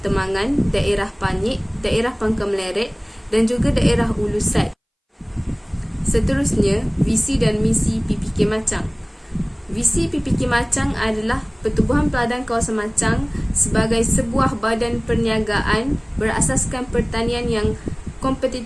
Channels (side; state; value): both; identical; correlation 1.00